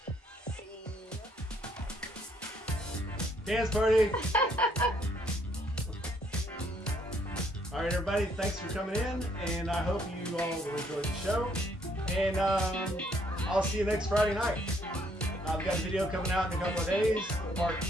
Dance party! All right, everybody, thanks for coming in, and I hope you all will enjoy the show. And I'll see you next Friday night. I've got a video coming out in a couple of days, part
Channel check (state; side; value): normal; both; correlation 0.68